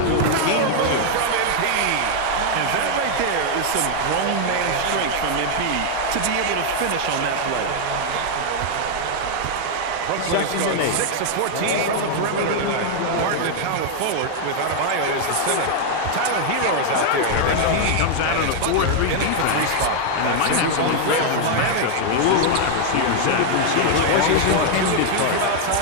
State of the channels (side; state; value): both; different; correlation 0.00